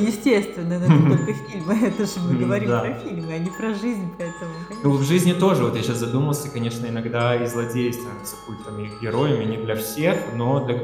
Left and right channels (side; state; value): both; identical; correlation 1.00